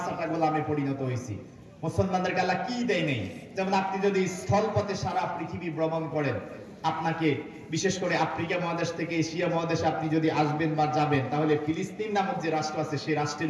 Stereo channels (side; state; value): both; identical; correlation 1.00